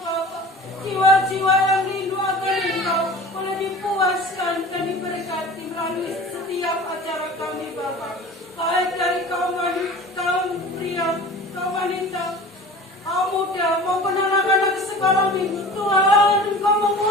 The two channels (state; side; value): normal; both; correlation 0.39